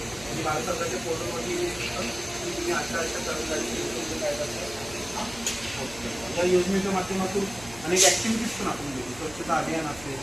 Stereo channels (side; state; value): right; noise; hum, 18 dB below the sound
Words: आणि भारत सरकारच्या पोर्टलवरती तुम्ही अशा कर्मचारी काय करतात. या योजनेच्या माध्यमातून अनेक ॲक्टिव्हिटीज पण आपण घेतो. स्वच्छता अभियान असेल,